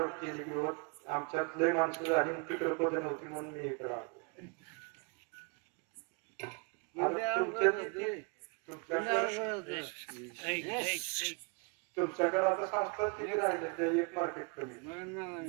केले की आमच्यात लय माणसं झाली, तिकडे पद नव्हती म्हणून मी इकडे आलो. तुमच्याकडे आता संस्था किती राहिले? ते एक मार्केट कमी,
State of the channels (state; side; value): quieter; left; 33.4 dB